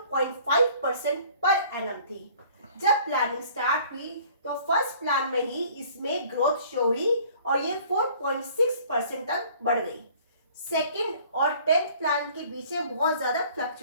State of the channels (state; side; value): inverted; both; correlation -0.53